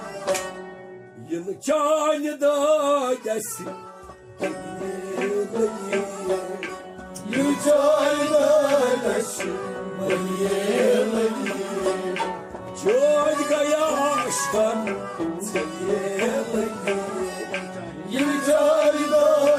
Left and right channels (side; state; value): both; identical; correlation 1.00